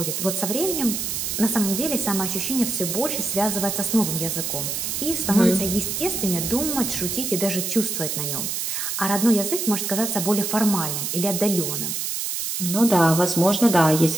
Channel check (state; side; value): noise; right; hiss, 2 dB below the sound